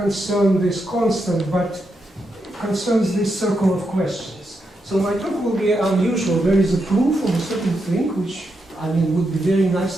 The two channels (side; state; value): both; normal; correlation 0.84